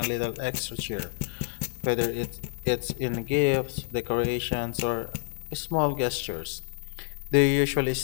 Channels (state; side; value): silent; right; 58 dB below the other